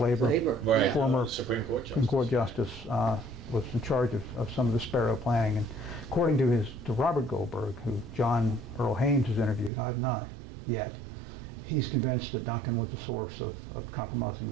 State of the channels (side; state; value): left; drops out; at 9.7 s